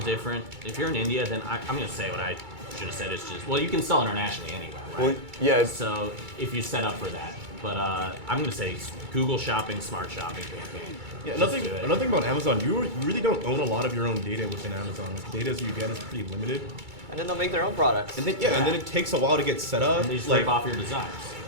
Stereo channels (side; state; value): left; late; 2.3 ms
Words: If you're in India, then I'm going to say what I should have said. It's just, well, you can sell internationally anyway, right? Well, yeah, So if you set up for that. But I'm going to say Google Shopping, Smart Shopping campaign. Yeah, Just another do it. thing about Amazon, you really don't own a lot of your own data within Amazon. The data you get is pretty limited. And then they'll make their own products. And then and then it takes a while to get set up. And they just like, rip off your designs.